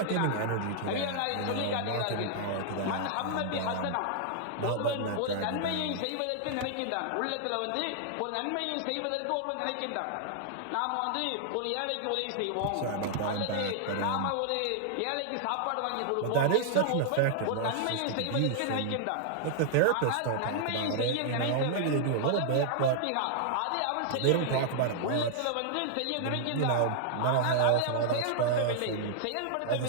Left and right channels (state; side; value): different; both; correlation -0.01